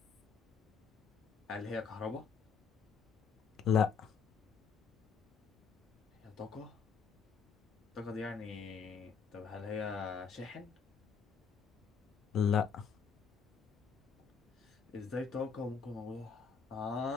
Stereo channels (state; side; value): quieter; right; 6.0 dB